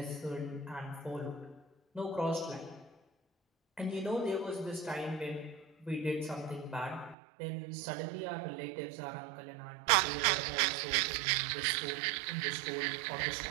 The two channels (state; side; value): drops out; left; at 7.2 s